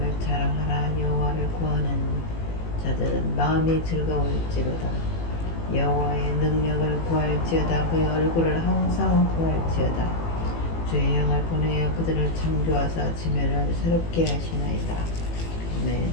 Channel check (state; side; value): late; right; 18 ms